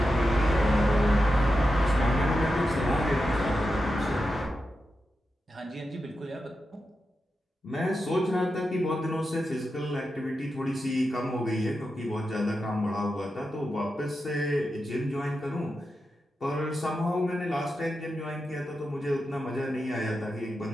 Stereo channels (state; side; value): normal; both; correlation 0.89